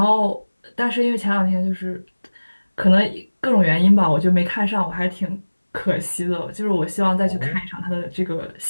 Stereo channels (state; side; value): inverted; both; correlation -1.00